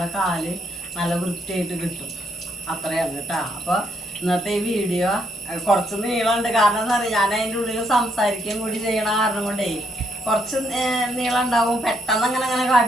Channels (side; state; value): both; normal; correlation 0.74